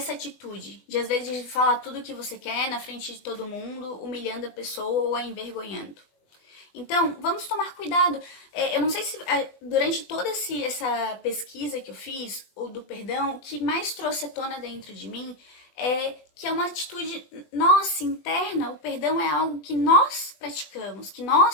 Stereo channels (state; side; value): late; right; 20 ms